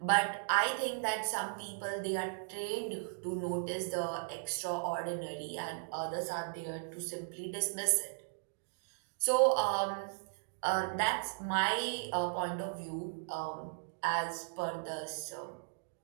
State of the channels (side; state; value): left; silent; digital silence